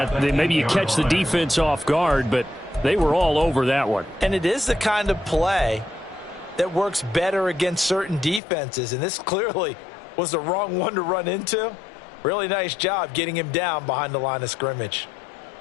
maybe you catch the defense off guard, but they were all over that one. And it is the kind of play that works better against certain defenses, and this clearly was the wrong one to run into. Really nice job getting him down behind the line of scrimmage.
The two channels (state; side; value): drops out; right; at 8.4 s